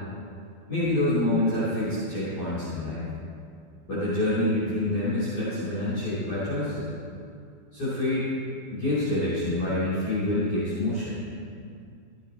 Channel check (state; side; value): late; right; 12 ms